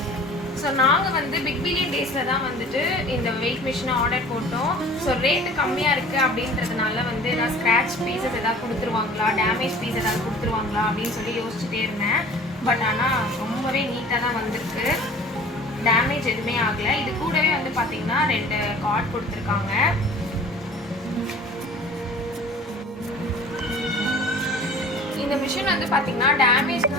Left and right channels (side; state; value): both; normal; correlation 0.45